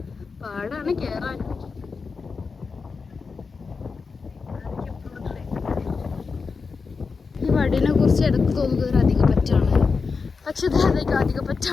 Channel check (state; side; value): quieter; right; 4.8 dB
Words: പാടാണ് കയറാൻ. ഈ വടീനെ കുറിച്ച് ഇടക്ക് തോന്നുന്നത് ഒരു അധിക പറ്റാണ്. പക്ഷെ ഇത് അധിക